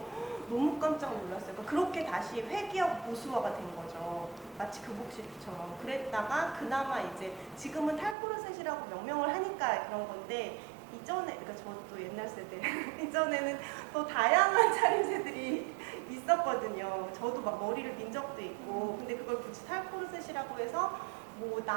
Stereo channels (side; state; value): left; drops out; at 8.2 s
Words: 너무 깜짝 놀랐어요. 그러니까 그렇게 다시 회귀하고 보수화가 된 거죠. 마치 교복시대처럼. 그랬다가 그나마 이제 지금은 탈코르셋이라고 명명을 하니까 그런 건데, 이전에, 그러니까 저도 옛날 세대 이전에는 더 다양한 차림새들이 있었거든요. 저도 막 머리를 민 적도 있고, 근데 그걸 굳이 탈코르셋이라고 해서 뭐